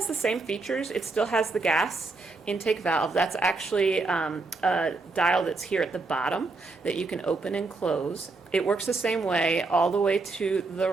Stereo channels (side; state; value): left; quieter; 3.6 dB